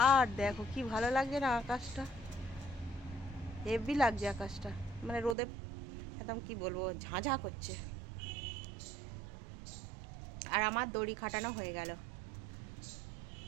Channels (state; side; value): drops out; left; at 5.4 s